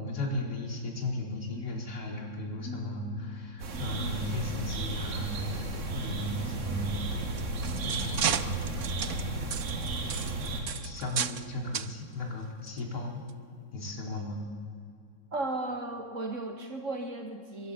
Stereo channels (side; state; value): left; late; 3.6 ms